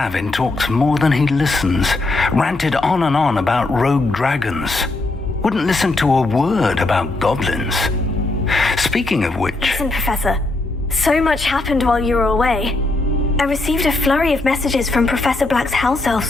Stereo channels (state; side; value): quieter; right; 3.1 dB